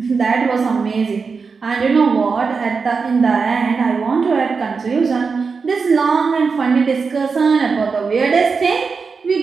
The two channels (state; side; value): quieter; left; 5.0 dB